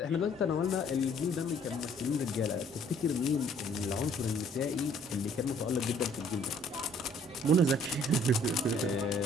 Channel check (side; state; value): both; normal; correlation 0.59